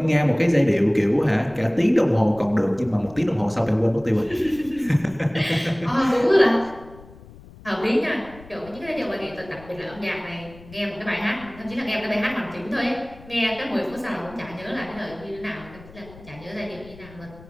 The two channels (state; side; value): noise; left; rumble, 20 dB below the sound